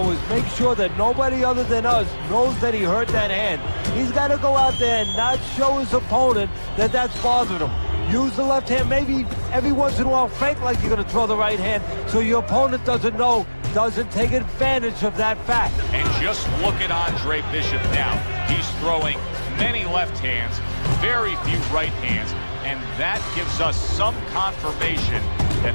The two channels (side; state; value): both; inverted; correlation -1.00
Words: is make sure that nobody other than us knows that he hurt that hand. He's got to go out there and not show his opponent that that's bothering him. Use the left hand, maybe every once in a while fake like you're going to throw the right hand so your opponent doesn't know, doesn't take advantage of that fact. And just look at Andre Bishop now. He's throwing many left hands, very few right hands, and that gives us some confirmation